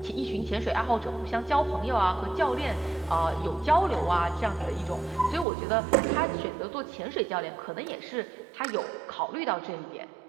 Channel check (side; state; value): left; drops out; at 5.5 s